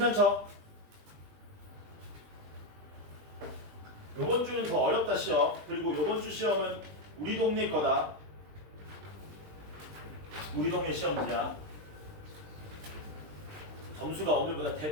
요번 주는 더 어렵다 시험. 그리고 요번 주 시험은 우리 동네 거다. 우리 동네 시험지야. 점수가 오늘보다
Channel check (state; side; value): late; left; 20 ms